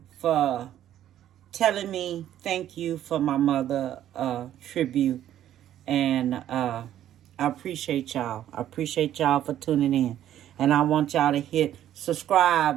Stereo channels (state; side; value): quieter; left; 11.6 dB